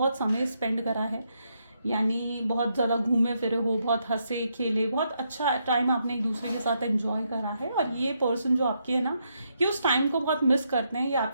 समय स्पेंड करा है, यानी बहुत ज़्यादा घूमे फिरे हो, बहुत हंसे खेले, बहुत अच्छा टाइम आपने एक दूसरे के साथ एंजॉय करा है। और ये पर्सन जो आपके है ना, ये उस टाइम को बहुत मिस करते हैं, ये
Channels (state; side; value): inverted; both; correlation -0.79